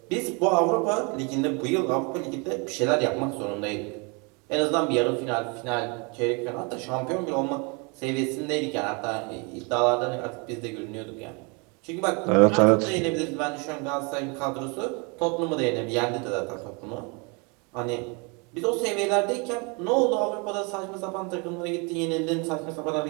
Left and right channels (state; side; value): quieter; left; 31.8 dB